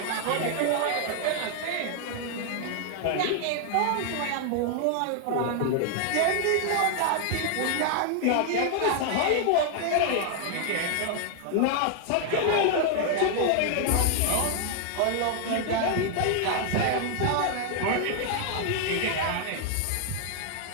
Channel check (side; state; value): both; different; correlation 0.00